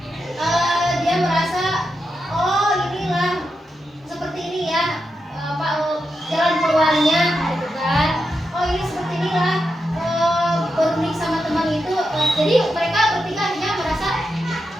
dia merasa oh inilah seperti ini ya, jalan keluarnya, gitu kan. Oh ini seperti inilah berunik sama teman itu. Jadi mereka bertiga akhirnya merasa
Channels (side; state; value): both; normal; correlation 0.87